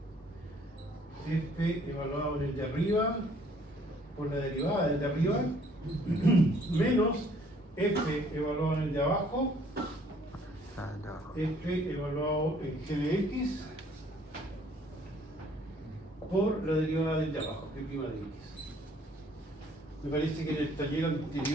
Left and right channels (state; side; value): normal; both; correlation 0.60